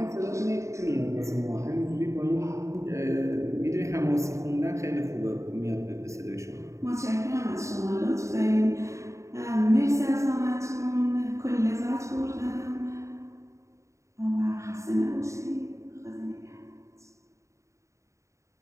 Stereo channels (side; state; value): left; late; 0.14 ms